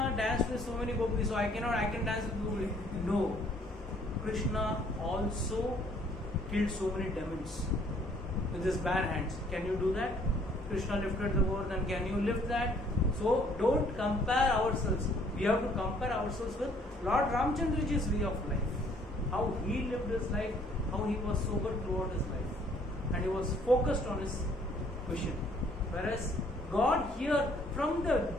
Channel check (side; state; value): both; normal; correlation 0.61